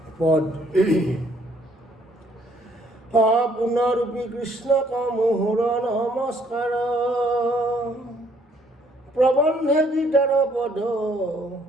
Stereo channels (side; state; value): both; normal; correlation 0.65